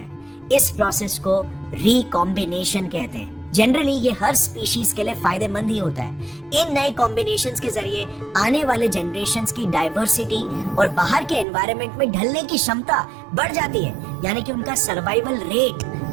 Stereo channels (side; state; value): left; drops out; at 11.5 s